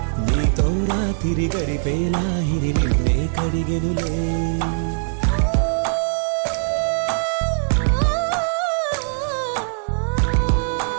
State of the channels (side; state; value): left; silent; digital silence